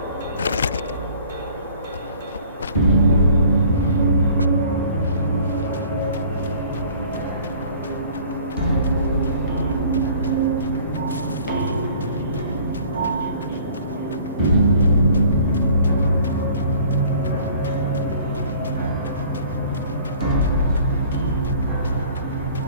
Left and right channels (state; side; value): inverted; both; correlation -0.52